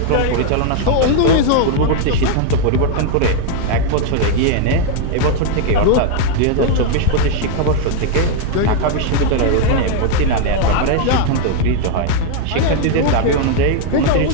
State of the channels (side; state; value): both; different; correlation 0.00